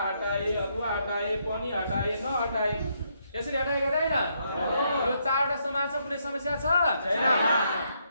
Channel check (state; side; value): inverted; both; correlation -0.76